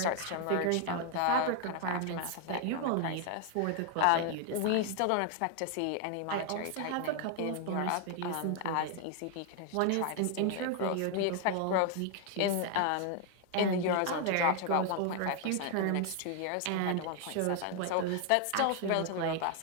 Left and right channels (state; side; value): different; both; correlation 0.00